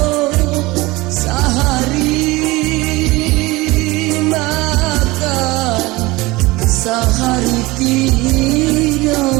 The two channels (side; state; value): left; quieter; 21.4 dB